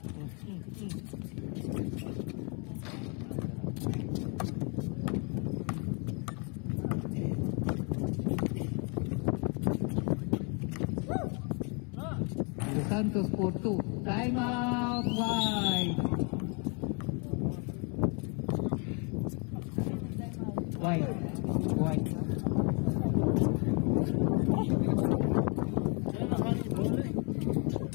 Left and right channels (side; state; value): right; quieter; 34.8 dB